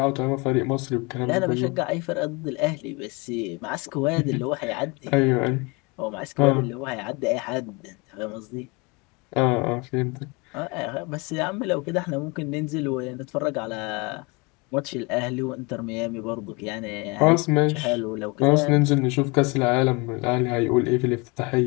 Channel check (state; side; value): quieter; right; 28.1 dB